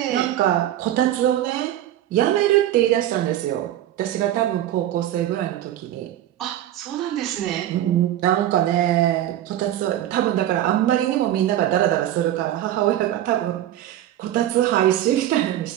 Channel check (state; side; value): quieter; left; 12.6 dB